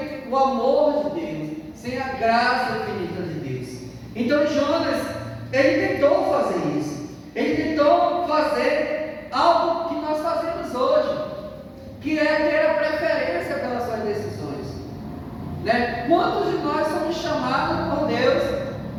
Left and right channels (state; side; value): identical; both; correlation 1.00